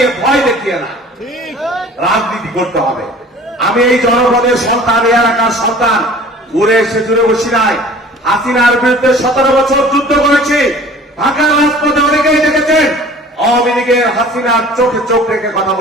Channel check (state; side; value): normal; both; correlation 0.46